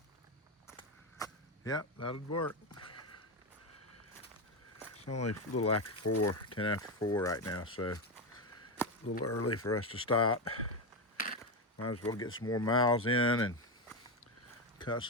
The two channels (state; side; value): normal; both; correlation 0.11